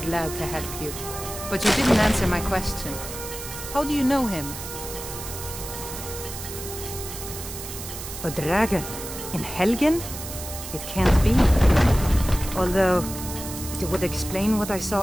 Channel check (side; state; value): right; noise; hiss, 9 dB below the sound